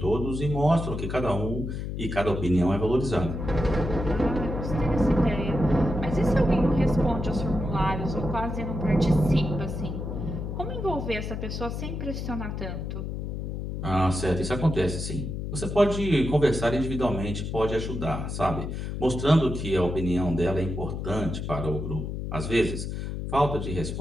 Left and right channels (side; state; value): left; noise; hum, 5 dB below the sound